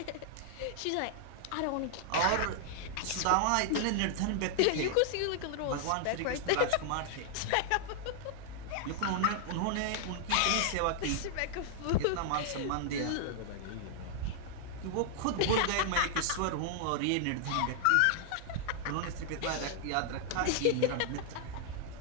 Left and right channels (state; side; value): different; both; correlation 0.00